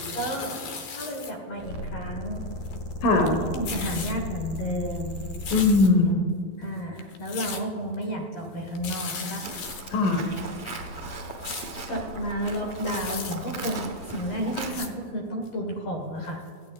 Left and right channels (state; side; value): late; right; 12 ms